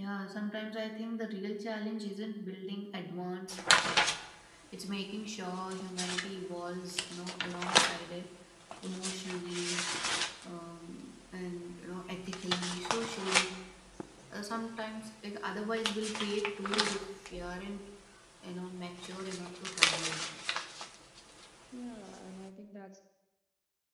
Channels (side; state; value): both; identical; correlation 1.00